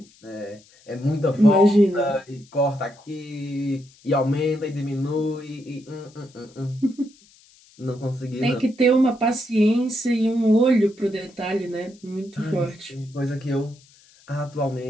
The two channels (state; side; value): noise; left; hiss, 28 dB below the sound